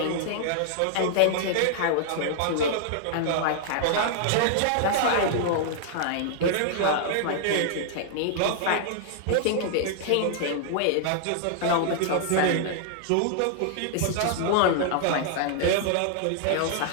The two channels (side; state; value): both; different; correlation -0.01